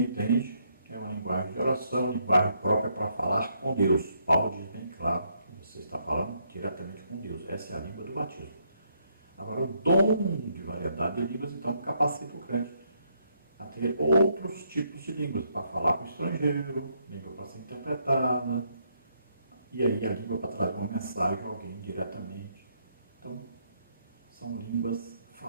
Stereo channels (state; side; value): inverted; both; correlation -0.73